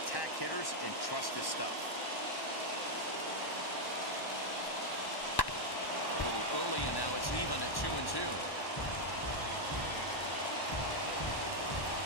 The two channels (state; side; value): late; right; 1.1 ms